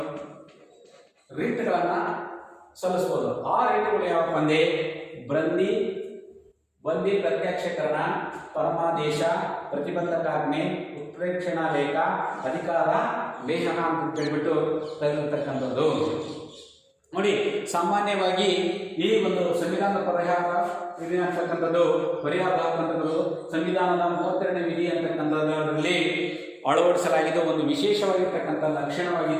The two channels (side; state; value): both; identical; correlation 1.00